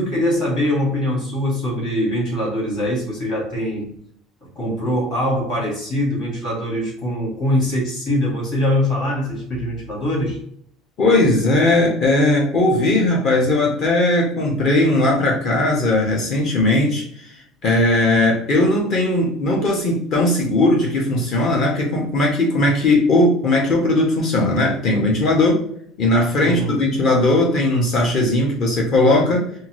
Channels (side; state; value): both; normal; correlation 0.40